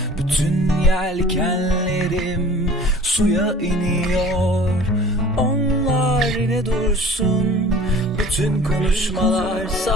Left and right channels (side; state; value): both; normal; correlation 0.46